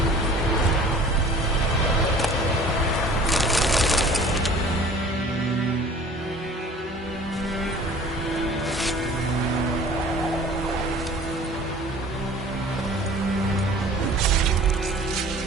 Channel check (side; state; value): both; normal; correlation 0.46